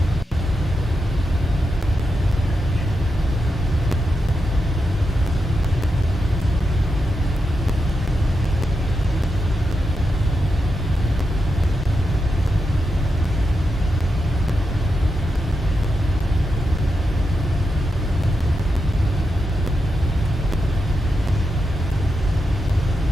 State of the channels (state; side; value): normal; both; correlation 0.86